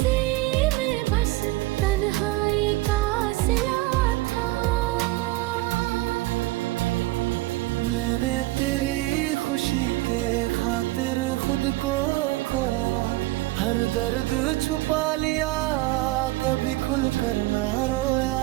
में बस तन्हाई का सिला था। मैंने तेरी खुशी के खातिर खुद को खोया। हर दर्द छुपा लिया, कभी खुल कर ना रोया।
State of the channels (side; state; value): left; quieter; 19.2 dB